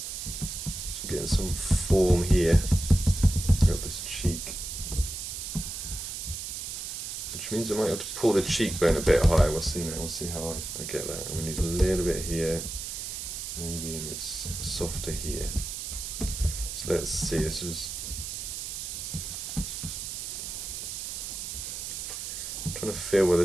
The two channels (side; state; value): right; noise; hiss, 6 dB below the sound